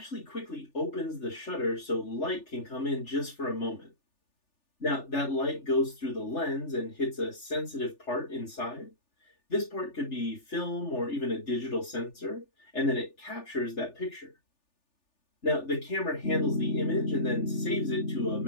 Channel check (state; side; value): late; right; 3.4 ms